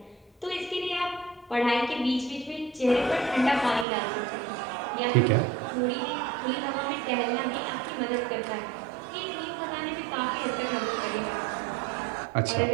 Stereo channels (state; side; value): drops out; left; at 3.9 s